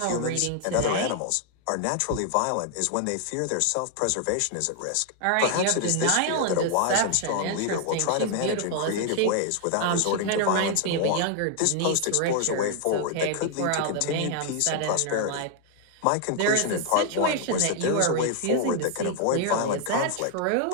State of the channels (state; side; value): different; both; correlation 0.00